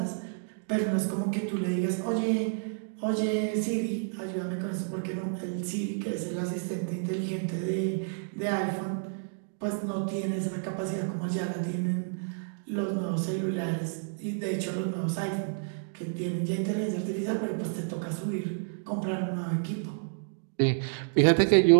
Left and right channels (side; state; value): left; silent; digital silence